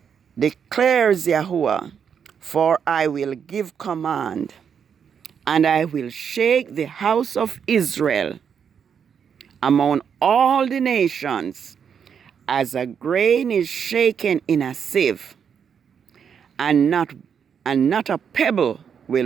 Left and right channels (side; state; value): left; quieter; 7.4 dB